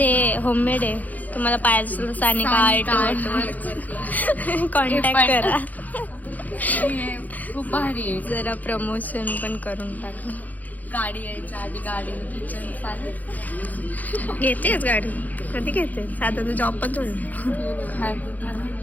होममेड आहे. तुम्हाला पाहिजे असेल तर सानिका आर्ट कॉन्टॅक्ट करा. खूप भारी आहे. जरा प्रमोशन पण करून टाका. गाडी यायच्या आधी गाडी किचन चालेल. घेतेच गाडी कधी घेते साधा तू जॉब पण थोडी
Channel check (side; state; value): right; late; 0.080 ms